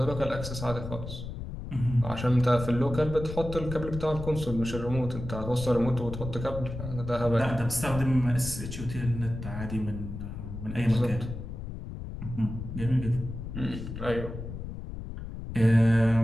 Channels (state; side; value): noise; left; rumble, 8 dB below the sound